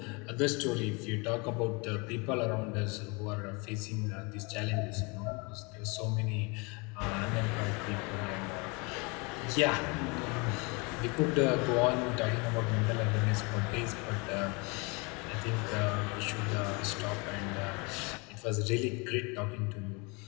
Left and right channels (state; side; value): quieter; right; 29.4 dB